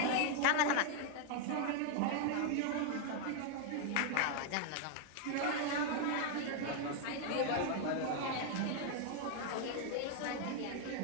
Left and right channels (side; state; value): both; different; correlation 0.00